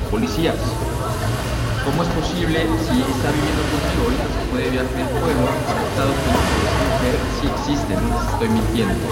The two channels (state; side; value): identical; both; correlation 1.00